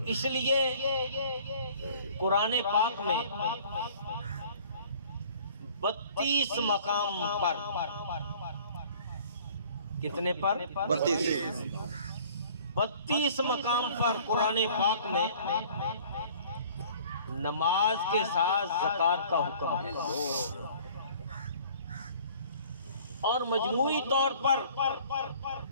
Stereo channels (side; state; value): both; inverted; correlation -0.51